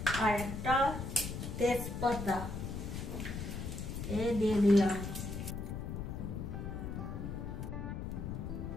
আর একটা তেজপাতা দিয়ে দিলাম।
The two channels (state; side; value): noise; left; rumble, 5 dB below the sound